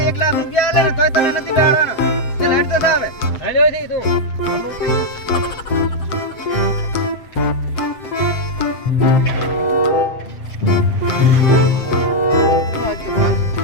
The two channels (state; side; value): late; right; 7.7 ms